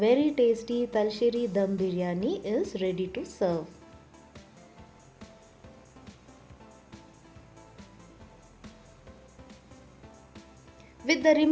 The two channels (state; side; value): identical; both; correlation 1.00